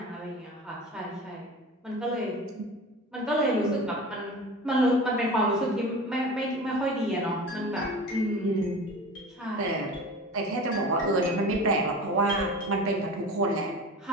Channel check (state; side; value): normal; both; correlation 0.35